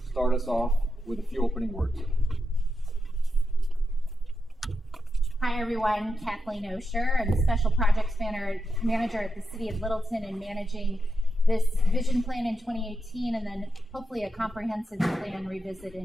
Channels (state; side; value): normal; both; correlation 0.87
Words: start us off with a few opening words. Hi everyone, Kathleen Osher. I'm the Special Projects Manager at the City of Littleton and managing this vision plan in 2018 and then hopefully a comprehensive plan revisit